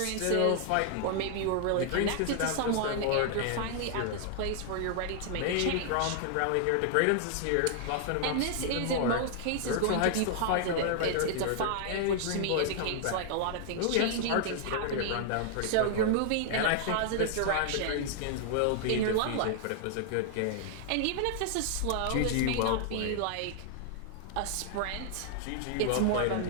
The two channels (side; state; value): both; different; correlation 0.00